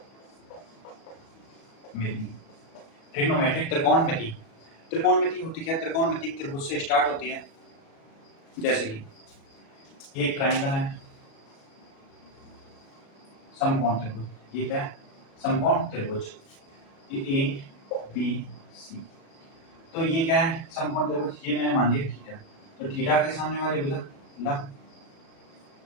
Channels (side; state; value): right; late; 36 ms